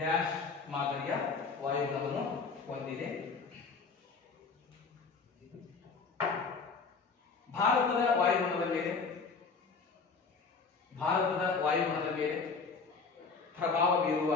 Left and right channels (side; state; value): right; quieter; 4.8 dB